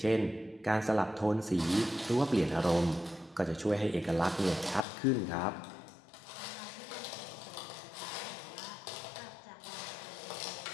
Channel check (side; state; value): right; drops out; at 4.9 s